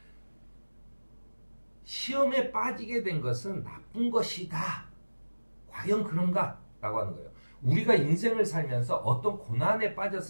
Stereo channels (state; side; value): inverted; both; correlation -1.00